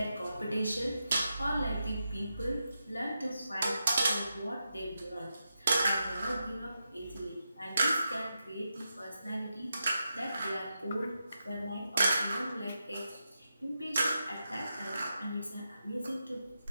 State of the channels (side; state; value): both; inverted; correlation -0.87